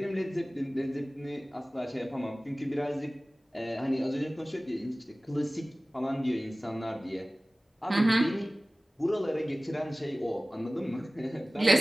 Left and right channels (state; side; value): normal; both; correlation 0.98